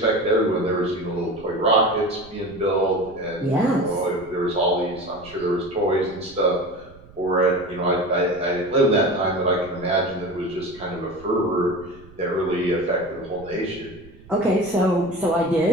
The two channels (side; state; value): right; noise; rumble, 22 dB below the sound